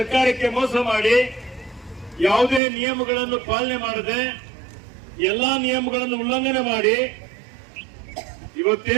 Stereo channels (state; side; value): drops out; left; at 2.6 s